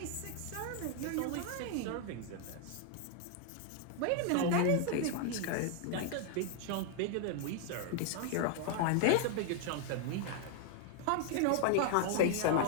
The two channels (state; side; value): different; both; correlation 0.00